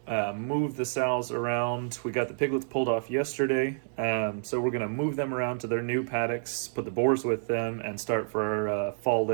move the sows around. We got the piglets pulled off yesterday, so we're going to move them around to their new paddocks, put the boars with them, and start for our fall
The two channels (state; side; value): silent; left; digital silence